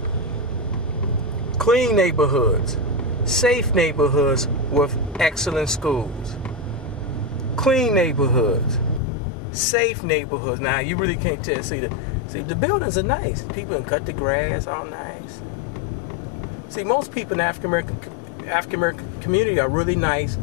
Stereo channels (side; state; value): right; drops out; at 9.0 s